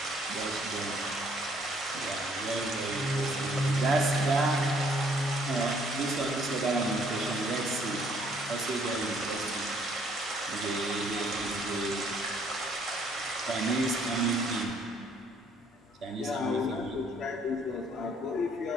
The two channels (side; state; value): both; normal; correlation 0.64